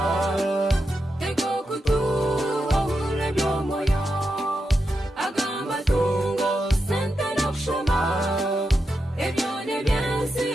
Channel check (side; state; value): both; normal; correlation 0.87